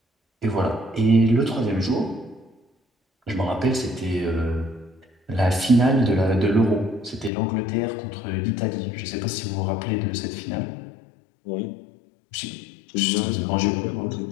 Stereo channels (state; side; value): drops out; right; at 7.3 s